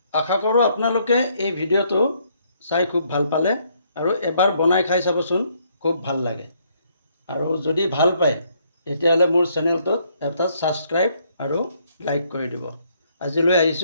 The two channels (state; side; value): inverted; both; correlation -0.69